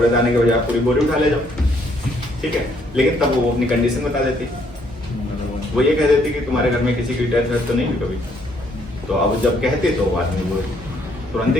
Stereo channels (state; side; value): normal; both; correlation 0.68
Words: दाने के बजाय पूरी बोरी उठा ले जाओ, ठीक है। लेकिन तब वो अपनी कंडीशन बता देती, वो ये कह देती कि तुम्हारे घर में किसी की डेथ वेथ तो नहीं हुई कभी। तो अब जब कहती तो वो आदमी वो तुरंत